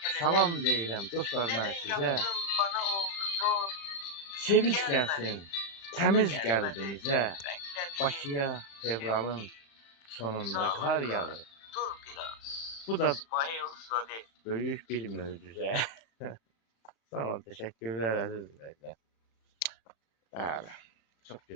Salam deyirəm dostlar mən sizə. Sevinç gəlsin təmiz qəlbinizə. Bakıya fevralın sonunda kar yağır. Bu da büyük bir möcüzə. Sağ olun, teşekkürler aziz izleyiciler. Bəli, çok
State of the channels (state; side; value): late; right; 35 ms